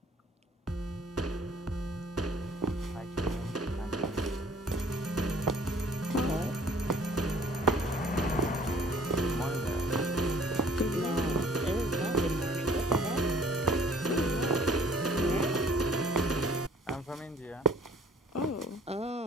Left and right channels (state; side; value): normal; both; correlation 0.55